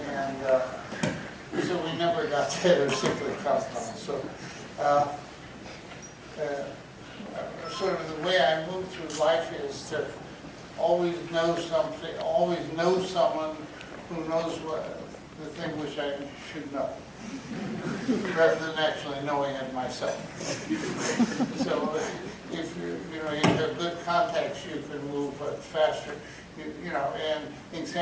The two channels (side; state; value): both; identical; correlation 1.00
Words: And so we never got together cyclic compounds. So sort of the way I move through life is to always know something, always know someone who knows what the thing which I should know, rather than actually knowing it myself. So if you have good contacts, you can move faster. You know, and